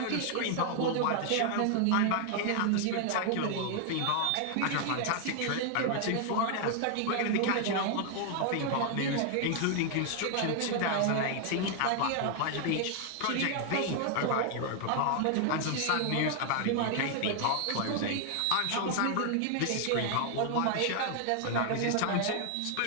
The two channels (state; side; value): different; both; correlation 0.00